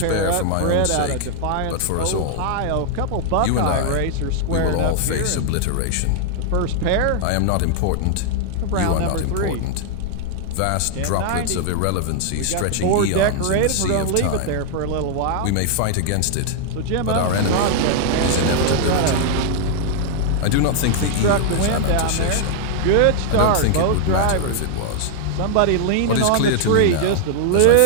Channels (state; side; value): different; both; correlation -0.01